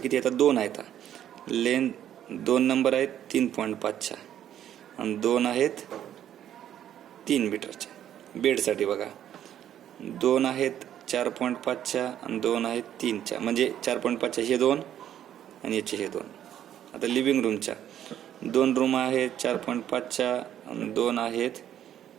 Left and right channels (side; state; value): left; quieter; 10.7 dB